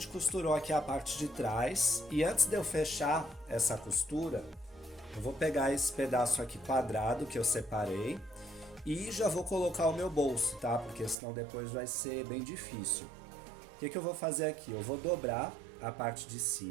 costurou aqui a parte de trás. E antes de eu fechar essa costura, eu vou pegar esse pedaço aqui quadrado que eu separei. E já vou colocar o meu bolso, tá? Porque senão depois vai ser bem difícil. O que eu vou fazer aqui? Eu vou dobrar a parte de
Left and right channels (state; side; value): drops out; left; at 11.2 s